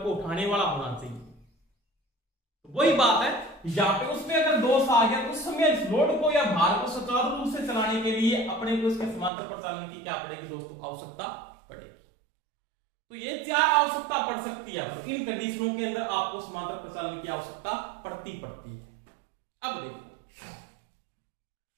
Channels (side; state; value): left; drops out; at 9.3 s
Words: को उठाने वाला होना चाहिए। तो वही बात है यहाँ पे, उसमें अगर दोष आ गया तो उस समय इस लोड को या भार को सुचारू रूप से चलाने के लिए अपने को इसके समांतर प्रचालन की क्या पड़ेगी दोस्तों, आवश्यकता पड़ेगी। तो ये 4 आवश्यकता पड़ सकती है, तो इन कंडीशनों के अंदर आपको समांतर प्रचालन की आवश्यकता पड़ती है। अब देखो